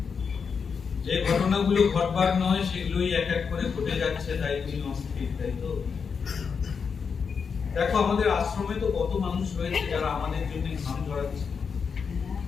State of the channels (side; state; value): right; quieter; 6.0 dB